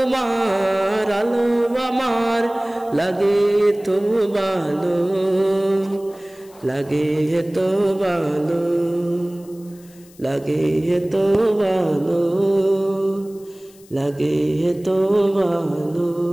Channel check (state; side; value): noise; left; hiss, 26 dB below the sound